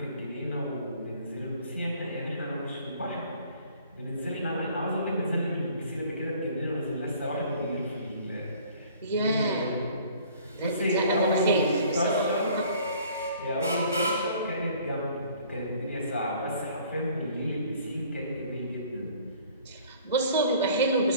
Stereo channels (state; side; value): inverted; both; correlation -0.54